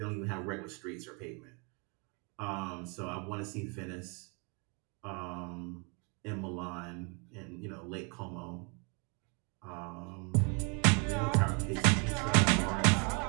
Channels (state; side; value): quieter; left; 35.0 dB